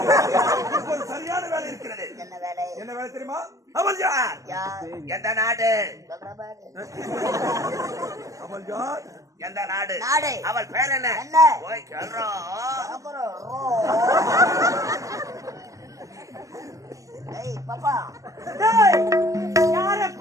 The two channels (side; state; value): left; late; 0.16 ms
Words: ஒரு சரியான வேலை இருக்கிறது என்ன வேலை என்ன வேலை தெரியுமா? அமல்ஜார் யார் எந்த நாடு? சொல்றா பாரு. அமல்ஜார் எந்த நாடு? நாடு. அவள் பேர் என்ன? என்ன? ஓய் சொல்றோம். அப்புறம் ஏய் பாப்பா டேய், யார